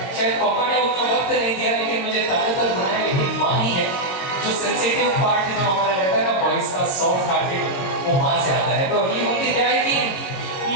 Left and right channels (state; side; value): late; right; 21 ms